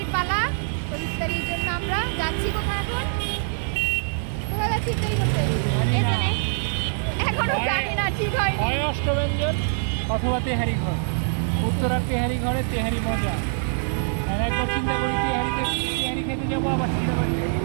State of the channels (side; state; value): left; silent; 59 dB below the other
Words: পালা। তো ইফতারির জন্য আমরা যাচ্ছি কোথায়? এখন কোথায় যাচ্ছি ইফতারি করতে? এখনো জানি না, ঠিক হয় অষ্টব্যঞ্জন অথবা তেহারি ঘর, উত্তরার তেহারি ঘরে তেহারি মজা। আর একবার চিন্তা করি তেহারি খেতে যাবো, আবার চিন্তা করি।